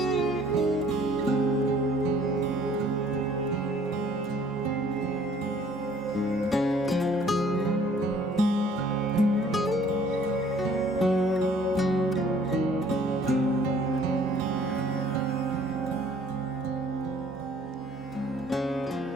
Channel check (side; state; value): both; normal; correlation 0.57